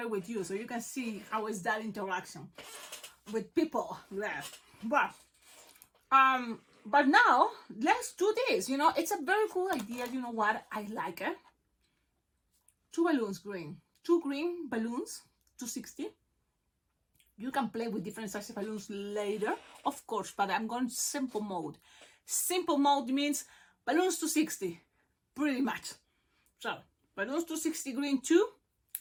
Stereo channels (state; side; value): identical; both; correlation 1.00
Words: it with you so you can see how is that interaction with people there. But now let's do this. It's a very cool idea. You know what? I like it. 2 balloons green. 2 green balloons, 260. You can play with different sizes of balloons later, of course, but I'm going simple mode. Simple mode means balloons 260, pretty much. So balloons 260 green 2.